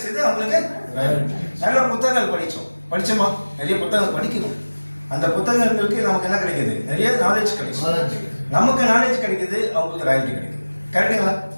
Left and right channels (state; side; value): inverted; both; correlation -1.00